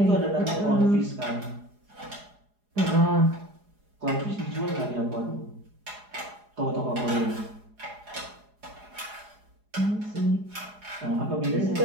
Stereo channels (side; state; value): left; late; 4.8 ms